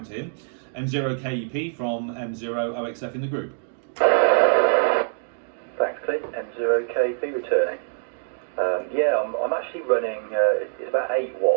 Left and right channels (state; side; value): silent; left; digital silence